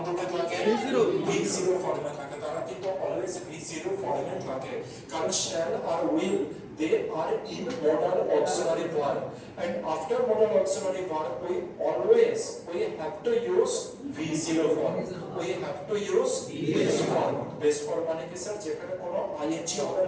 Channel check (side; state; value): both; identical; correlation 1.00